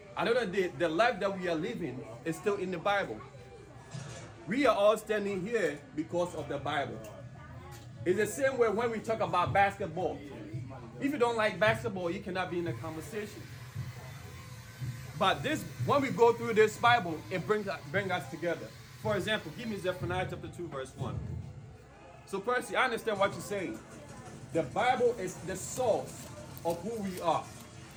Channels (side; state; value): both; identical; correlation 1.00